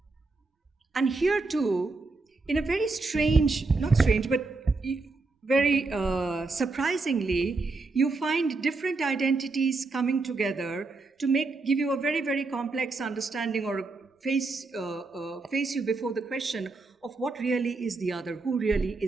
And here too, in a very very surprisingly, you find different identities coming together to give you a very, very complex understanding, or face you before the question of what really is the other, who really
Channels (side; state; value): left; quieter; 3.7 dB